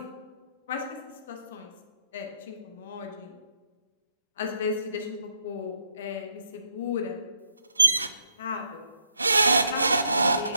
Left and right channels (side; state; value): both; inverted; correlation -0.75